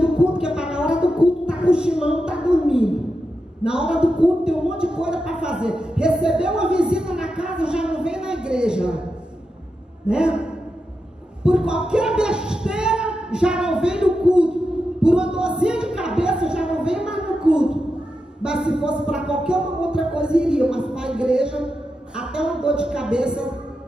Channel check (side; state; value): both; normal; correlation 0.88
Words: culto, que é para na hora do culto tá cochilando, tá dormindo. Na hora do culto tem um monte de coisa para fazer. Recebeu uma visita na casa, já não vem na igreja, né? por qualquer besteira já não vem no culto, por uma dorzinha de cabeça já não vem mais no culto. Mas se fosse para qualquer outra coisa iria, mas para a igreja até uma dor de cabeça